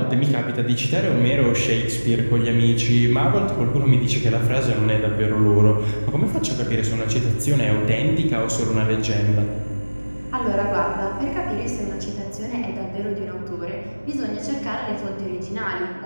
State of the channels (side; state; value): both; inverted; correlation -1.00